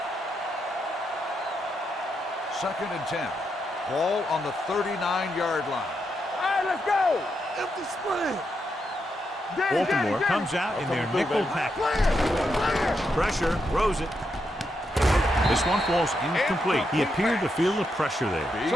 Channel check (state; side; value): normal; both; correlation 0.82